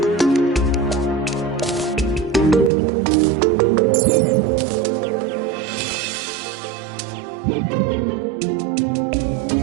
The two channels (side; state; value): left; drops out; at 2.7 s